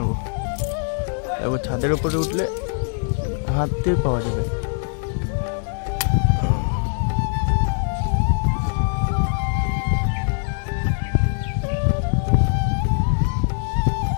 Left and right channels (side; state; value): right; silent; digital silence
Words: এবার ছাদের উপরে উঠলে হাত দিয়ে পাওয়া যাবে।